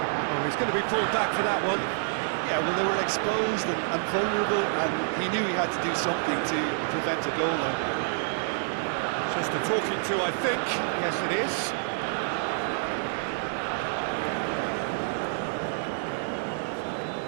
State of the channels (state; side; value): silent; left; digital silence